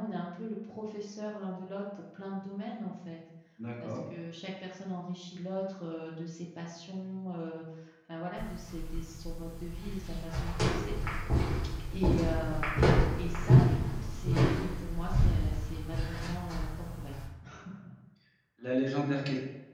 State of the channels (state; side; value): identical; both; correlation 1.00